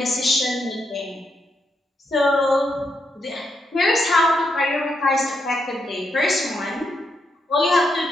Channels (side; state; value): both; normal; correlation 0.81